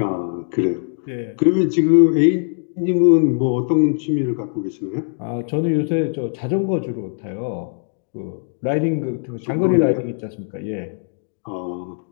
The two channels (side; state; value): right; silent; digital silence